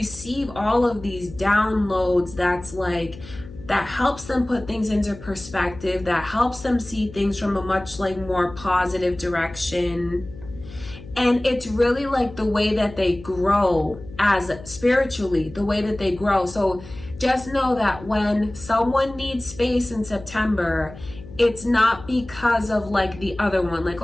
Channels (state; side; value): noise; left; hum, 16 dB below the sound